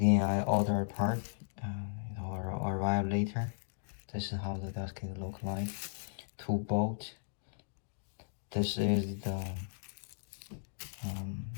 I order a part, it will arrive later. This is how the gasket look like. 2 bolts. This is the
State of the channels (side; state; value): right; silent; digital silence